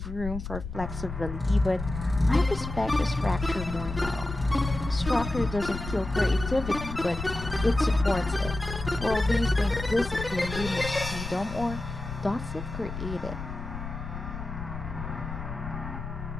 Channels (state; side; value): noise; left; rumble, 8 dB below the sound